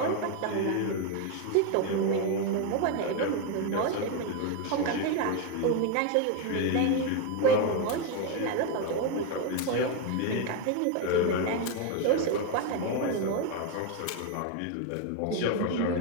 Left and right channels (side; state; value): both; different; correlation 0.02